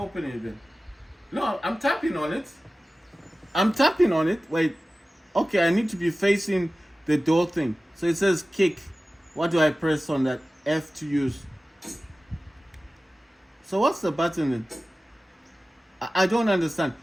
open it then? No, I'm tapping on it. I'm tapping on it. Wait. Okay, I need to be facing the door thing. So it says kick. What do I press on that? F to use. So what's the button then? I don't understand.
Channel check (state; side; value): normal; both; correlation 0.96